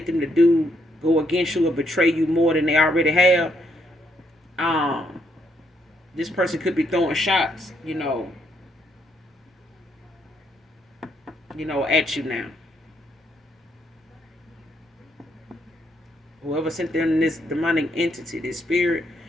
them to go against you or betray you more than they already have. Um, this person could be throwing shots, at you now. Whoever sent them this demonic entity, this spirit,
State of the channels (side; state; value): both; normal; correlation 0.75